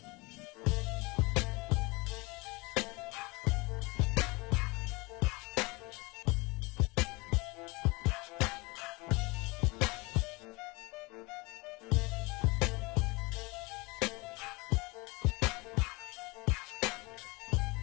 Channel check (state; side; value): quieter; right; 25.4 dB